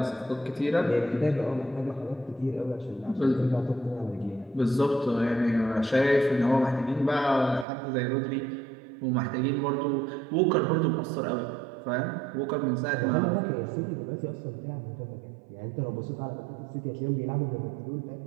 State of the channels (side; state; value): left; drops out; at 7.7 s